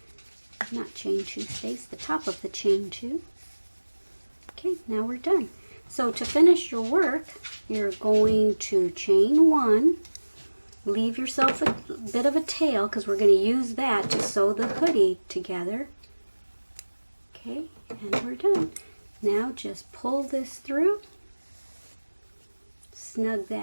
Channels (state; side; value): inverted; both; correlation -1.00